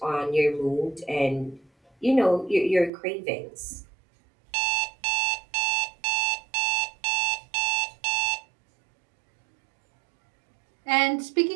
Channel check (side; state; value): left; drops out; at 2.9 s